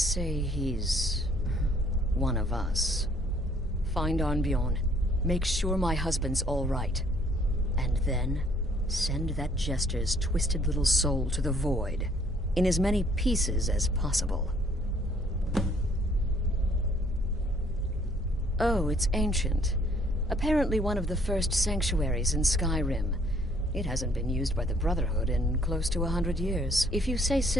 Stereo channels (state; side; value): normal; both; correlation 0.62